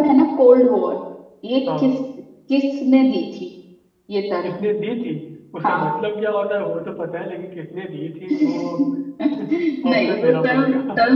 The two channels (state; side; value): identical; both; correlation 1.00